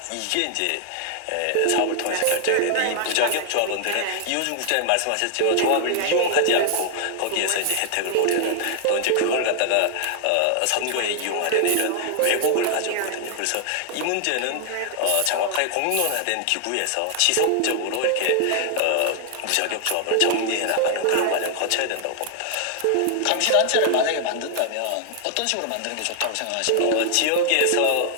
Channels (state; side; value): different; both; correlation 0.00